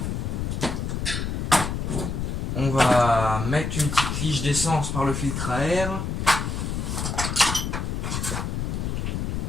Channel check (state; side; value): noise; left; rumble, 2 dB below the sound